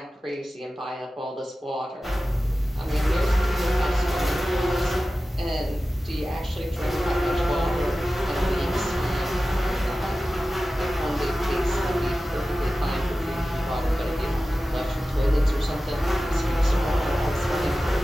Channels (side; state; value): both; normal; correlation 0.95